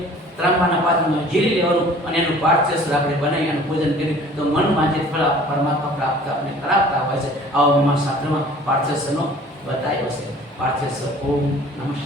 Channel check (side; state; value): both; normal; correlation 0.49